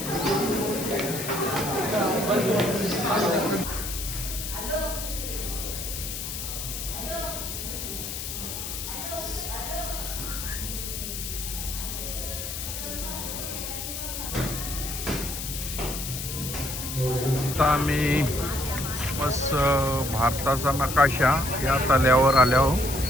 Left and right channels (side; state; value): left; noise; hiss, 6 dB below the sound